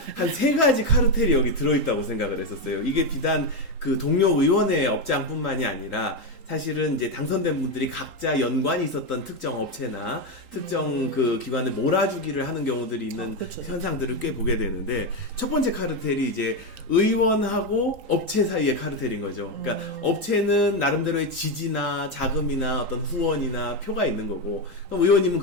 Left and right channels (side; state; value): left; late; 3.8 ms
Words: 3가지 카르텔이 여기 들어있다고 생각을 했었어요. 이게 비단 그 동료 의원의 업장뿐만이 아니라 사실은 이제 당선된 분들이 각자 연관이 있었던 특정 업체나 특정 그 기관을 몰아주기를 하는 경우들이 있는 그렇죠. 현상들을 꽤 보게 되는데 첫 번째 카르텔이 이제 의원하고 업체 사이의 카르텔인 거죠. 그러니까 업체는 나름대로의 지지나 자금이나 어떤 후원이나 표가 있는 거고 그럼 의원님은